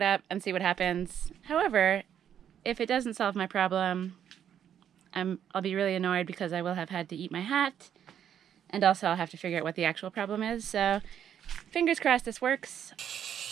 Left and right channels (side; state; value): left; quieter; 9.4 dB